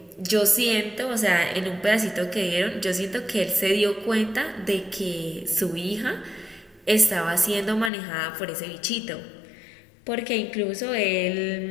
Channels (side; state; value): right; drops out; at 7.9 s